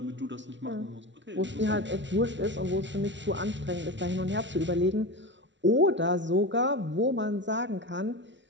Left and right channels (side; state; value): left; late; 0.53 ms